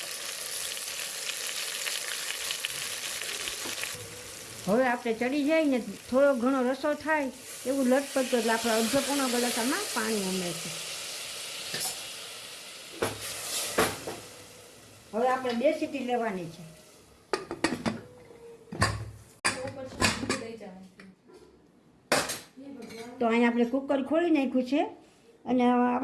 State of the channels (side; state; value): both; identical; correlation 1.00